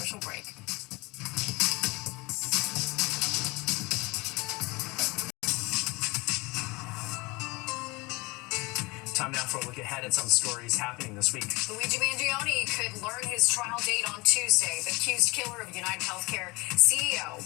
break. Time now for a look ahead at some stories happening this week. Luigi Mangione could learn his trial date on Tuesday. The accused killer of United Healthcare CEO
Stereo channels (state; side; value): quieter; right; 24.9 dB